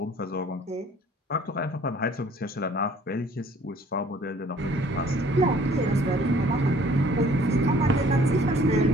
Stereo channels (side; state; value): both; normal; correlation 0.55